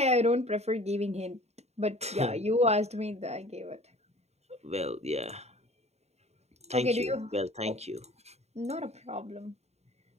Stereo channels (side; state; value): left; late; 0.31 ms